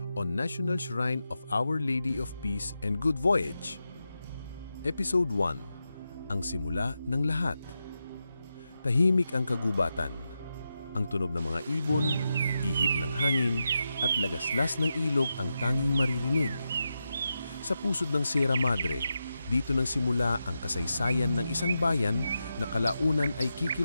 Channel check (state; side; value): inverted; both; correlation -0.89